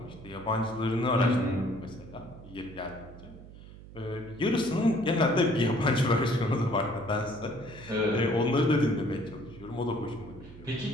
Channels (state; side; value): noise; right; hum, 17 dB below the sound